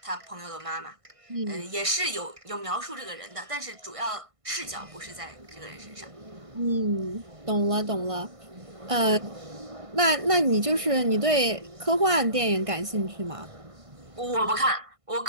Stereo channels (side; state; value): left; late; 1.5 ms